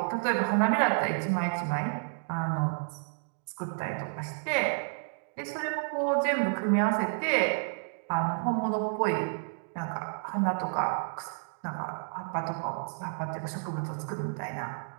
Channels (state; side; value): silent; left; digital silence